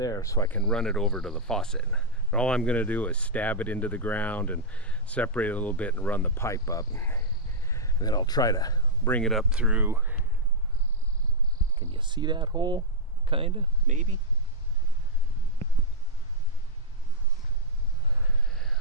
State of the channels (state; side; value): normal; both; correlation -0.07